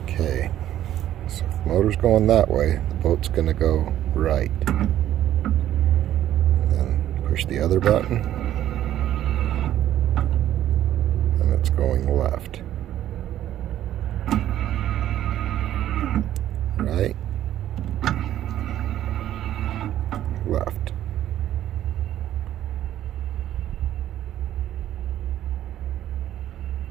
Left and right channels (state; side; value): quieter; left; 12.2 dB